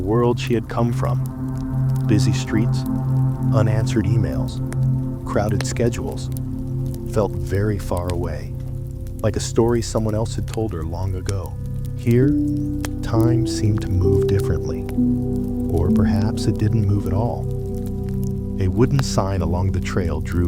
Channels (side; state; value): both; identical; correlation 1.00